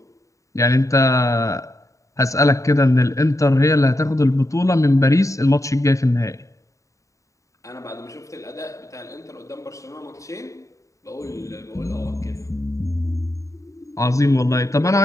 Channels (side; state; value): right; late; 0.16 ms